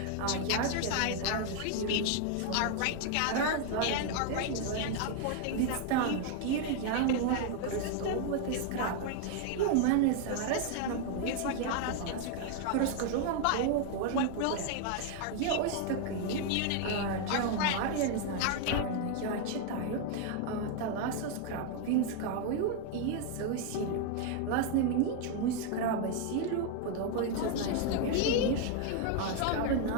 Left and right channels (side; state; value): both; different; correlation 0.00